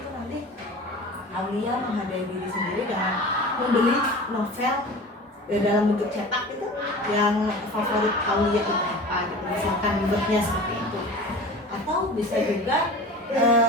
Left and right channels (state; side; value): normal; both; correlation 0.37